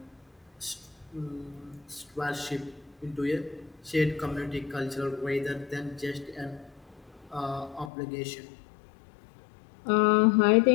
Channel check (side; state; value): right; drops out; at 7.9 s